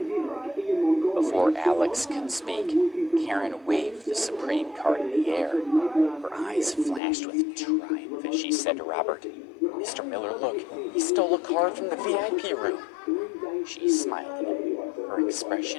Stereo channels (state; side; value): drops out; right; at 7.0 s